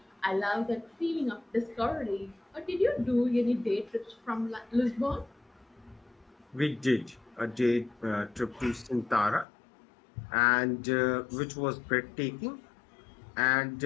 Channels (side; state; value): right; drops out; at 9.5 s